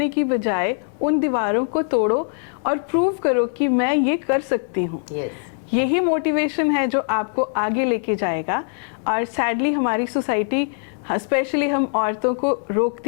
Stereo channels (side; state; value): right; silent; digital silence